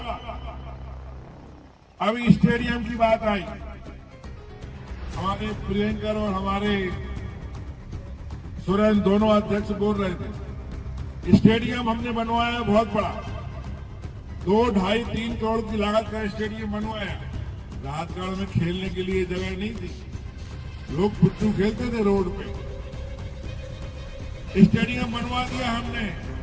अभी स्टेडियम की बात आई, हमारे प्रियंकर और हमारे सुरेंद्र दोनों अध्यक्ष बोल रहे थे, स्टेडियम हमने बनवाया बहुत बड़ा, 2, 2.5, 3 करोड़ की लागत का स्टेडियम बनवाया। राहतगढ़ में खेलने के लिए जगह नहीं थी, लोग पुट्टू खेलते थे रोड पे, स्टेडियम बनवा दिया हमने।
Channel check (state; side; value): identical; both; correlation 1.00